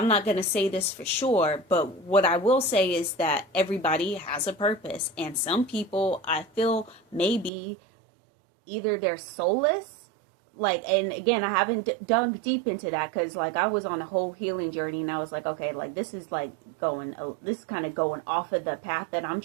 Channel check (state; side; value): drops out; left; at 7.5 s